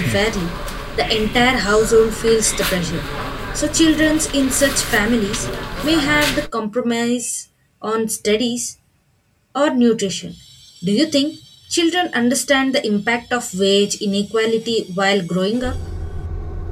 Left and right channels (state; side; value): identical; both; correlation 1.00